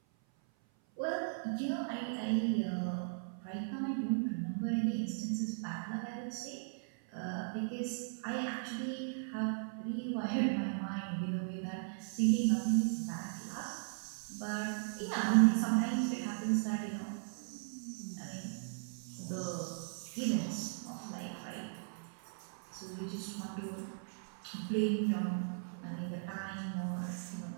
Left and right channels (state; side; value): silent; left; 53 dB below the other